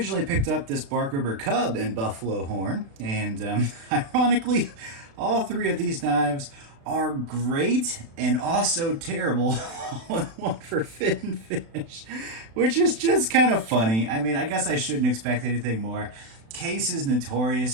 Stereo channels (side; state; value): left; late; 36 ms